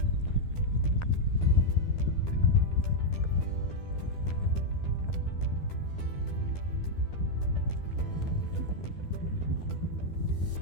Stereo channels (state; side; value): late; right; 12 ms